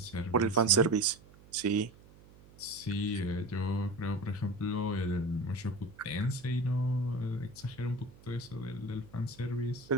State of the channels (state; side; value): noise; right; hum, 23 dB below the sound